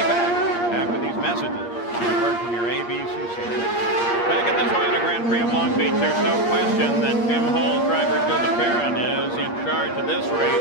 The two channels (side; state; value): right; late; 8.5 ms